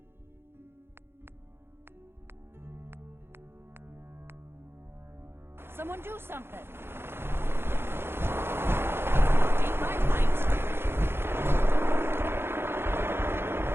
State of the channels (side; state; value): left; late; 0.11 ms